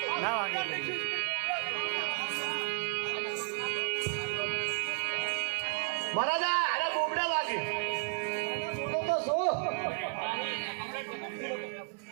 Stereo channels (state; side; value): quieter; left; 37.3 dB